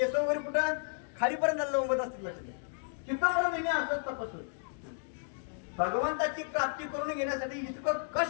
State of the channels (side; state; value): right; silent; digital silence